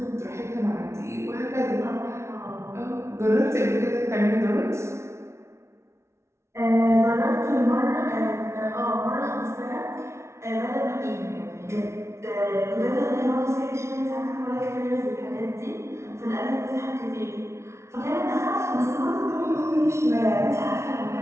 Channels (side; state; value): left; late; 0.13 ms